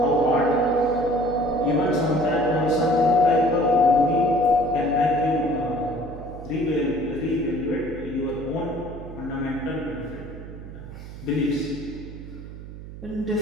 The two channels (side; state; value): right; noise; hum, 13 dB below the sound